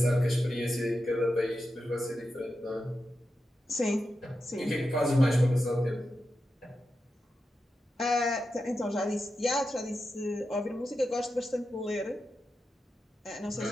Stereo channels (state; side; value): normal; both; correlation 0.90